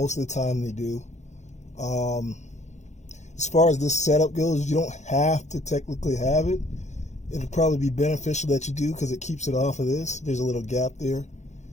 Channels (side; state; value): right; late; 0.34 ms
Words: of the time they do. As far as this setup goes, you don't have to technically have it. It'll probably be beneficial that you do, because it keeps it off of this. There's a little gap there,